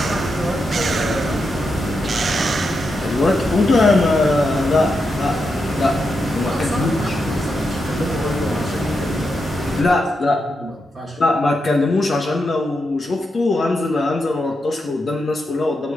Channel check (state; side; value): normal; both; correlation 0.85